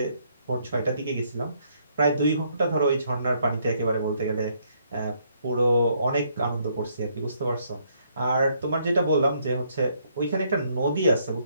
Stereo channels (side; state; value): both; inverted; correlation -0.70